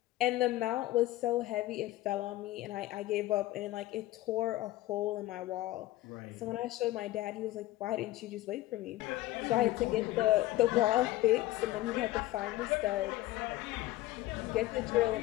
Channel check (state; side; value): quieter; right; 16.4 dB